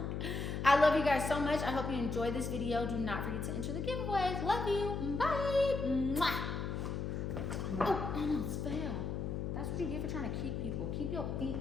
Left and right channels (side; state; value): left; noise; hum, 3 dB below the sound